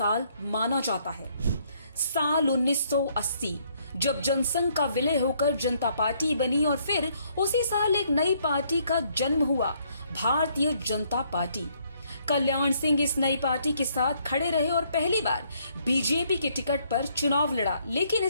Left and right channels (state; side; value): inverted; both; correlation -0.68